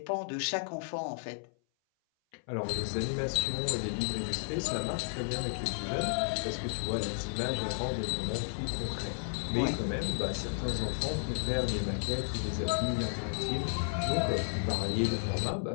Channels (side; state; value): right; silent; 56 dB below the other